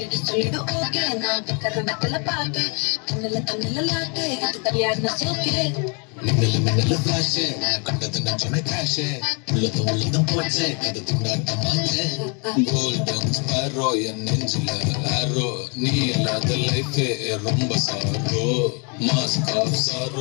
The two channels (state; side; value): quieter; right; 35.6 dB